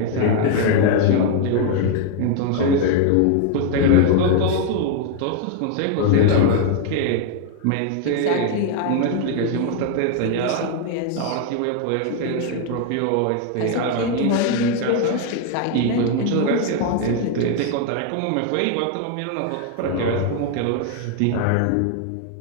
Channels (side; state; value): both; different; correlation 0.00